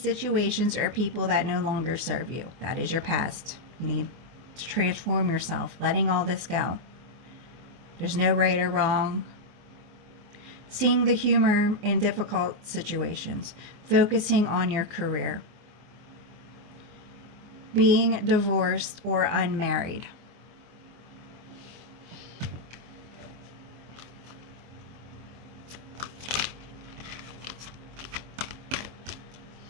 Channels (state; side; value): late; left; 24 ms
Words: or people that no longer serve you. That is your past. You need to transform yourself, letting all this go. There's no right or wrong. Seeing the humor in difficult situations. Focusing on your career. Being divorced or unmarried.